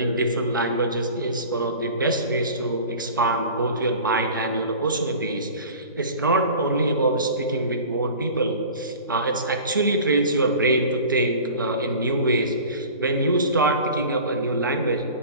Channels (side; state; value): both; inverted; correlation -0.40